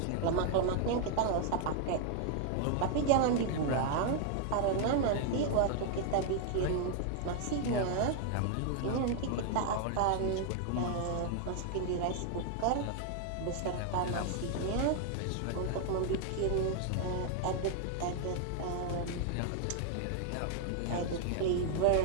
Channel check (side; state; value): both; different; correlation 0.00